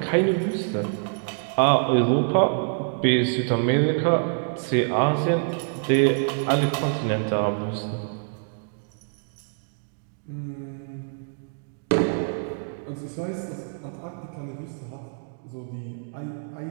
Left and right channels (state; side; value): silent; left; digital silence